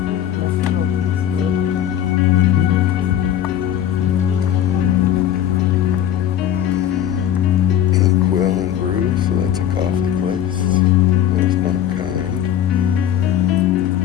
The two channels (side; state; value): right; quieter; 10.6 dB